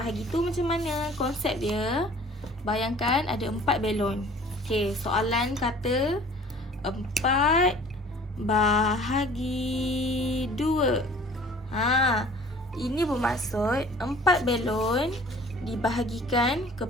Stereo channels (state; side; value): normal; both; correlation 0.49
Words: tu macam mana konsep dia? Bayangkan ada 4 belon. Okey, soalan kata 4 bahagi 2. Ini bermaksud 4 belon dibahagikan